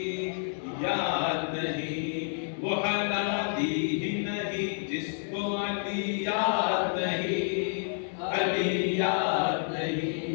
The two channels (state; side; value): silent; right; 58 dB below the other